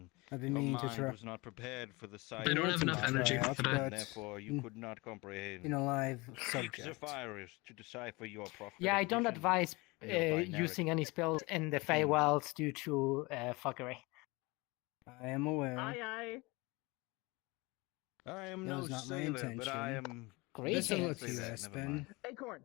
I've been Your meaning to mind try. was not prepared for the sight They don't of have the enough mind, energy out, for that. but Therefore, you could not comprehend. in a live Seek subject. Sapphires to decipher your prophetic Yeah, I don't vision. advise Your binary using any spells in the Feywilds due to fuckery. I am aware. Aye. I am That no was not my sailor, but I intention. am. Great. Listen Greetings. with you, Never Espen. mind. Acorn.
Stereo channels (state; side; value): quieter; right; 24.6 dB